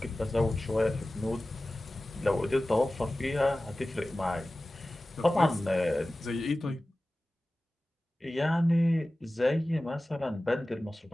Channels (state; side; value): normal; both; correlation 0.96